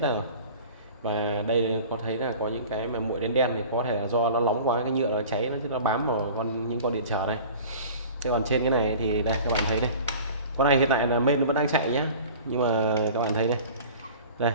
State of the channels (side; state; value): both; inverted; correlation -0.41